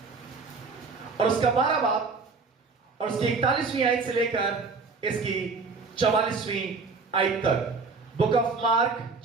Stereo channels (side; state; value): left; quieter; 4.5 dB